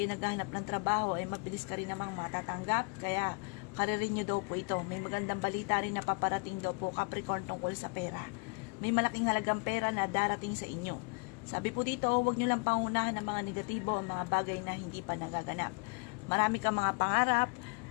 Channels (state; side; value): quieter; right; 32.0 dB